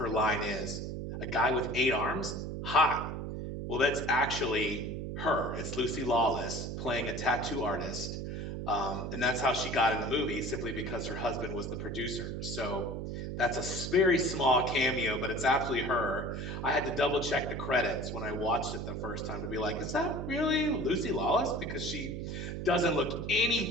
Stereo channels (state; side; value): noise; right; hum, 5 dB below the sound